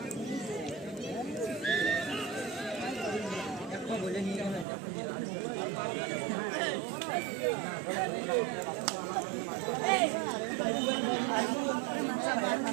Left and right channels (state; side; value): drops out; left; at 4.7 s